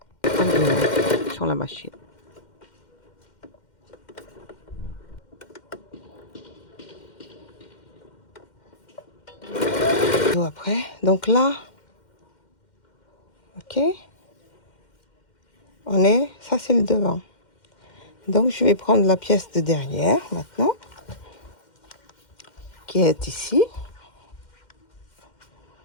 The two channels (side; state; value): right; late; 2.1 ms